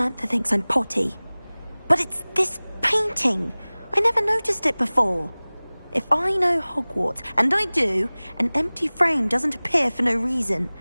thinks I'm potty. But it's this painting. I never noticed it before. If I know Hogwarts, and I do, an empty frame doesn't appear for no reason.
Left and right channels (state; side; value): inverted; both; correlation -1.00